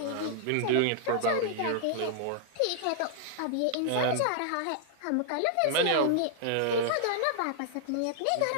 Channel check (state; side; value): different; both; correlation -0.01